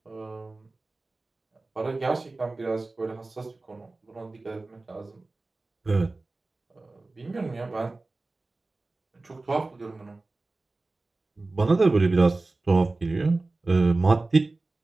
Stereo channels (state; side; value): quieter; left; 3.3 dB